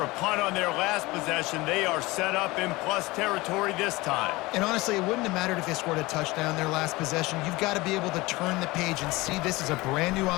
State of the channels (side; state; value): right; quieter; 21.5 dB